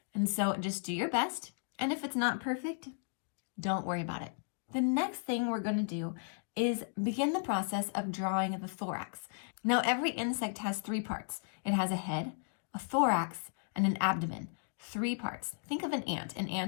And so just do your best, and if it's not perfect, don't worry about it. The next thing we're going to do is begin the process of drawing the thorax. Now, every insect has 3 parts. It has a head, a thorax, and an abdomen. 3 parts. Think of an ant. An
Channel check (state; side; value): silent; right; digital silence